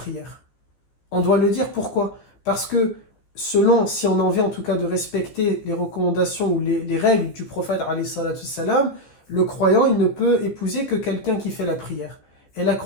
On doit le dire, pourquoi? Parce que selon, si on a envie en tout cas de respecter les recommandations ou les règles du prophète alayhi salatu salam, le croyant, il ne peut épouser que quelqu'un qui fait la prière. Et la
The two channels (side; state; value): right; late; 14 ms